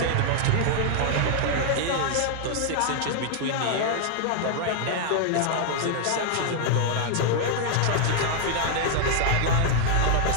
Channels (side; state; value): both; different; correlation 0.00